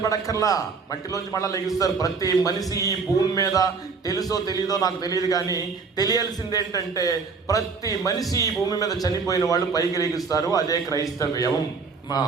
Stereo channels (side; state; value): left; quieter; 5.0 dB